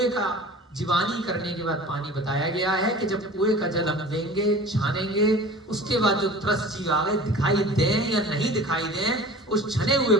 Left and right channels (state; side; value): normal; both; correlation 0.41